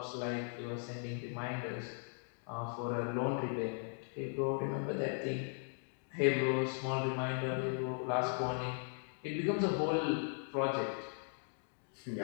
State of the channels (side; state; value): right; silent; 52 dB below the other